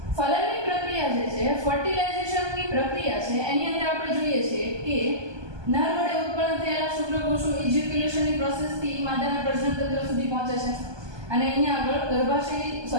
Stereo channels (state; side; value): late; left; 1.2 ms